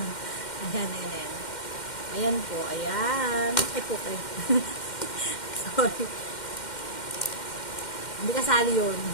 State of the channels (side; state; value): right; late; 2.1 ms